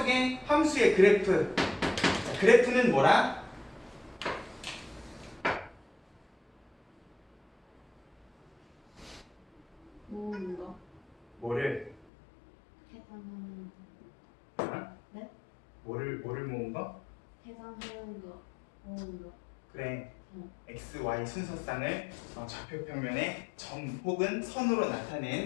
함수의 그래프 자, 그래프는 뭐라? 모으는 거. 뭐를? 계산하는 어? 네? 뭐를 모은 거? 계산하는 거. 모으는 거. 그래. x, y 순서쌍을 좌표평면에 점 혹은 선으로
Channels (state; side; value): drops out; right; at 12.1 s